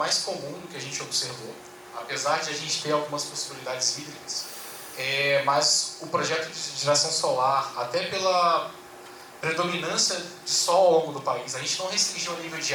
comum do que a gente observou, apesar de a gente ter algumas possibilidades hídricas. Mas o projeto de geração solar, até pela predominância de sol ao longo do país, a gente não restringiu o nível de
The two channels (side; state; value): both; identical; correlation 1.00